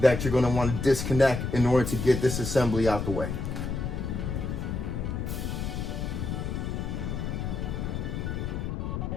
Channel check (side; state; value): left; noise; rumble, 3 dB below the sound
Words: you're going to want to disconnect in order to get this assembly out the way.